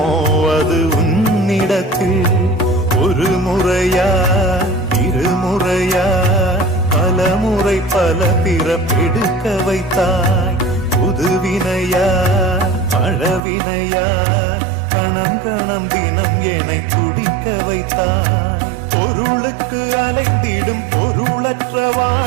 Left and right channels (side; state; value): left; drops out; at 13.4 s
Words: அது உன்னிடத்தில் ஒரு முறையா இருமுறையா பலமுறை பல பிறப்பெடுக்க வைத்தாய் புதுவினையா பழவினையா கணம் கணம் தினம் என்னை துடிக்க வைத்தாய் பொருளுக்கு அலைந்திடும் பொருளற்ற